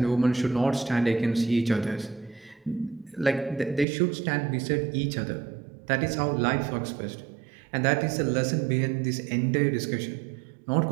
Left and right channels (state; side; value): drops out; left; at 3.9 s